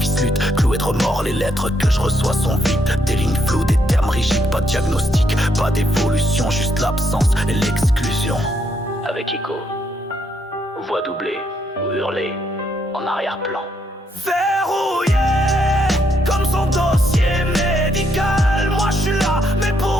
lutte, cloué de remords. Les lettres que je reçois sont vides, des lignes floues, des termes rigides. Pas de diagnostic, pas d'évolution, juste l'absence et l'exclusion. Avec Ico, voix doublée ou hurlée en arrière-plan. Verrouillé comme son dossier médical. Moi je suis là, mais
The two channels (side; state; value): both; normal; correlation 0.75